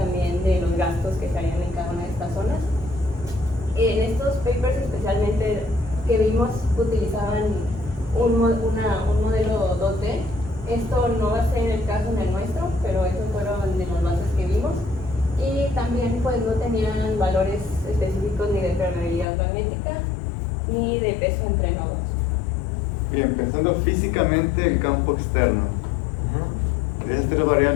de los gastos que se harían en cada una de estas zonas. En estos papers especialmente que vimos utilizaban un modelo 2D. Esto no va a ser el caso en el nuestro, pero esos fueron de las bases que vimos. Y también pues no tenían valores específicos ni de permeabilidad magnética ni de peso entre nodos. Bien, pensando físicamente el campo externo. ¿Esas tres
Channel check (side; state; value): right; drops out; at 19.2 s